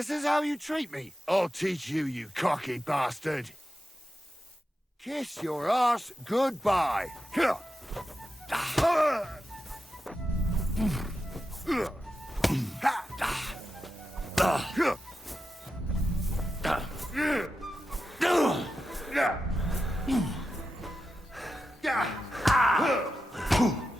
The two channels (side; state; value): both; normal; correlation 0.90